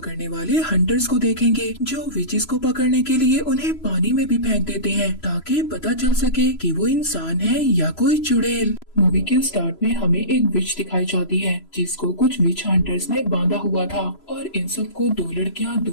वाले हंटर्स को देखेंगे जो विचेस को पकड़ने के लिए उन्हें पानी में भी फेंक देते हैं ताकि पता चल सके कि वो इंसान है या कोई चुड़ैल। मूवी के स्टार्ट में हमें एक विच दिखाई जाती है जिसको कुछ विच हंटर्स ने बांधा हुआ था और इन सबको दो लड़कियां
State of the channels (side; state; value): right; late; 3.0 ms